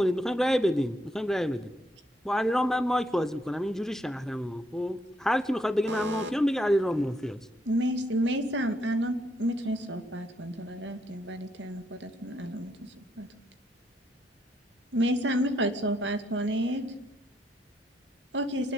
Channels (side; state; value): both; normal; correlation 0.75